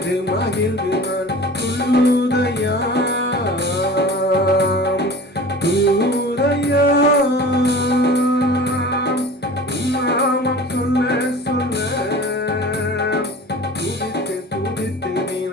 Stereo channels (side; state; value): both; normal; correlation 0.39